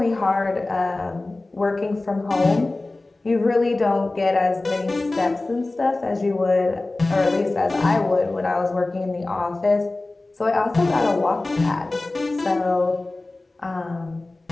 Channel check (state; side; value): quieter; right; 3.0 dB